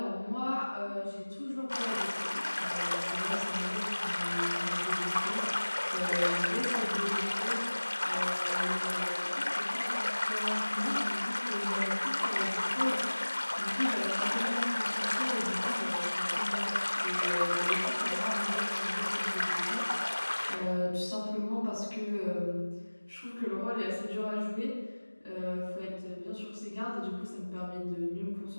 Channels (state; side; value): inverted; both; correlation -1.00